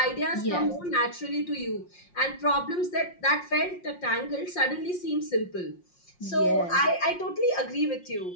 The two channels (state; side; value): late; right; 5.6 ms